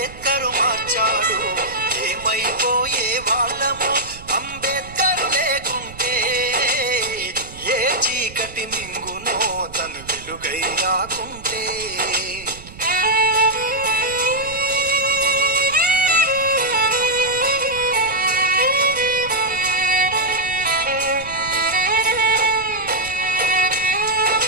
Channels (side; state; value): right; noise; rumble, 17 dB below the sound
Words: మార్చాడు. ఏమైపోయే వాళ్ళమో అంబేద్కరు లేకుంటే, ఏ చీకటి మింగునో తను వెలుగై రాకుంటే.